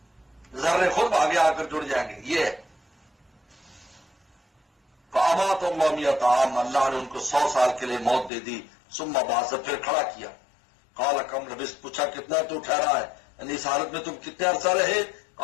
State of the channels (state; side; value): drops out; right; at 8.3 s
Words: ذرے خود بھاگے آ کر جڑ جائیں گے. یہ فامات اللہ میۃ عام، اللہ نے ان کو 100 سال کے لیے موت دے دی. ثم بعث، پھر کھڑا کیا. قال کم لبثت، پوچھا کتنا تو ٹھہرا ہے، یعنی اس حالت میں تم کتنے عرصہ رہے؟